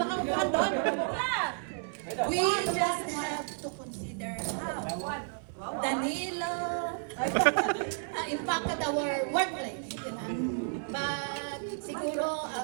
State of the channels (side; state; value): left; silent; 56 dB below the other